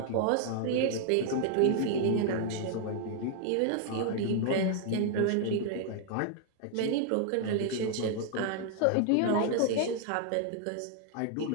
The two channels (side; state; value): both; different; correlation 0.00